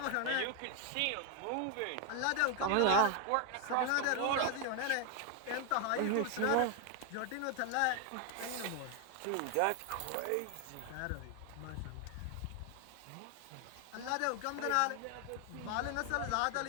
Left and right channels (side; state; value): both; different; correlation 0.01